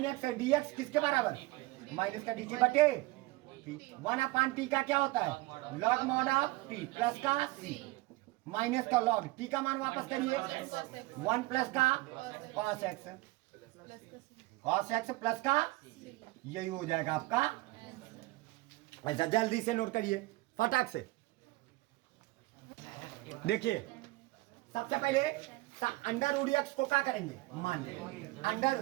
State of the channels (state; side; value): quieter; left; 21.3 dB